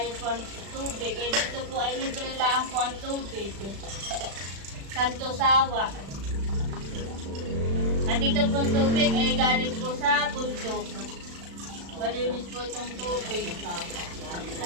po ang tubig. Dito po ay libre lang po ang tubig. Santo Sawa. At dito po ang tubig ay galing po sa bundok. Malinis po itong tubig.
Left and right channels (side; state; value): left; late; 36 ms